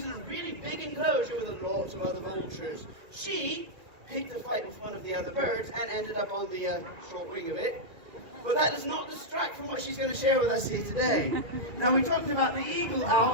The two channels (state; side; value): late; left; 2.4 ms